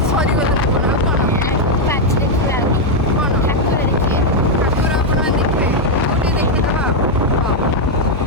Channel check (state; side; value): normal; both; correlation 0.01